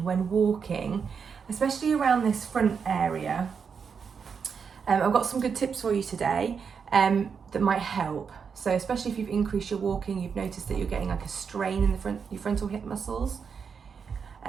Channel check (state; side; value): quieter; left; 6.2 dB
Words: when walking, especially around this front area, I've got some good tips for you today that might help. So especially if you've increased your walking, you've noticed that you're getting like a strain in your frontal hip muscles.